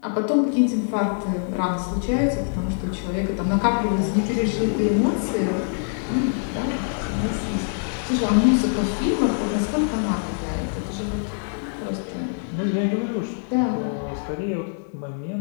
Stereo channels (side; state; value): right; silent; 63 dB below the other